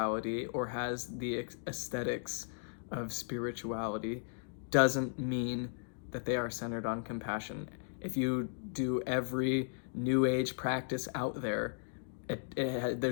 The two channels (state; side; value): silent; right; digital silence